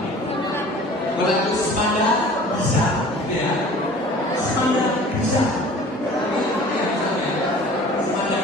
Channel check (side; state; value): both; normal; correlation 0.45